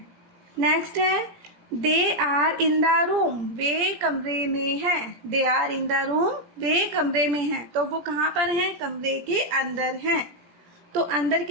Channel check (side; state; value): left; late; 17 ms